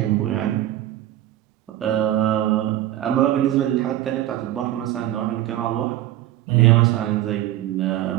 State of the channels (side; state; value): left; quieter; 13.6 dB